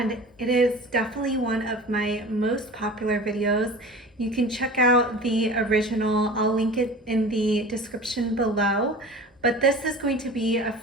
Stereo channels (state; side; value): normal; both; correlation 0.38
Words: it is definitely one of my most popular videos. You can check out the original. I'll link it in the description below. But this is going to be a